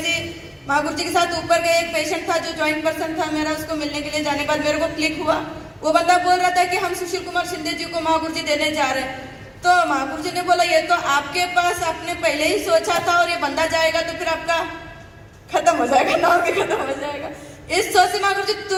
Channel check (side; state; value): both; identical; correlation 1.00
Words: महागुरु जी के साथ ऊपर गए, एक पेशेंट था जो ज्वाइंट पर्सन था मेरा, उसको मिलने के लिए जाने के बाद मेरे को क्लिक हुआ, वो बंदा बोल रहा था कि हम सुशील कुमार शिंदे जी को महागुरु जी देने जा रहे हैं। तो महागुरु जी ने बोला ये तो आपके पास आपने पहले ही सोचा था और ये बंदा जाएगा तो फिर आपका खत्म हो जाएगा, नाम भी खत्म हो जाएगा। इस सोच से महागुरु जी